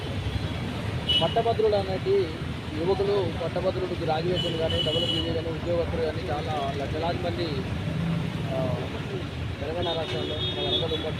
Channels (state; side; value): identical; both; correlation 1.00